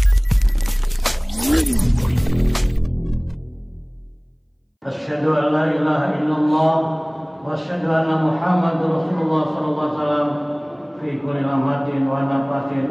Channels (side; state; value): both; identical; correlation 1.00